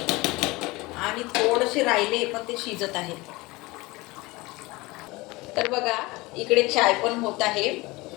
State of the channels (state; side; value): quieter; right; 22.3 dB